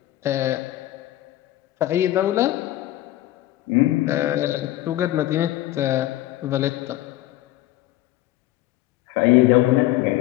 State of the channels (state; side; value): quieter; right; 15.4 dB